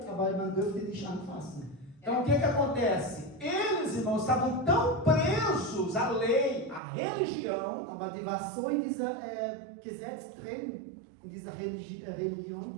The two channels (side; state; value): left; drops out; at 6.8 s